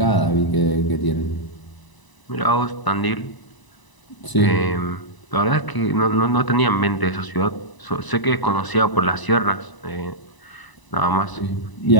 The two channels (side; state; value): right; late; 1.0 ms